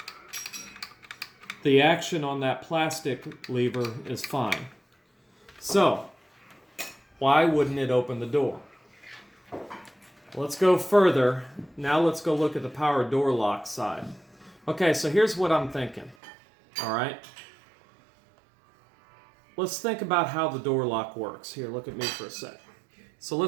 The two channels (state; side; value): drops out; left; at 16.2 s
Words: the action on that plastic lever is fine. So, why wouldn't it open the door? Let's go further. Now let's go look at the power door lock side. Okay, so here's what I'm thinking. All right. Let's think about how the door lock works. Here, look at me for a sec. So